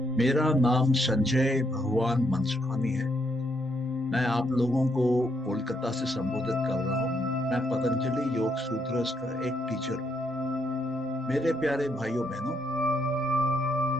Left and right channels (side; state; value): both; normal; correlation 0.75